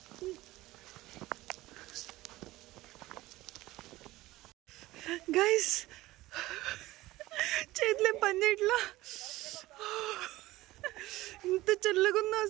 గైస్ చేతులే పని చేయట్లా. ఇంత చల్లగా ఉందో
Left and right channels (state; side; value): quieter; left; 17.9 dB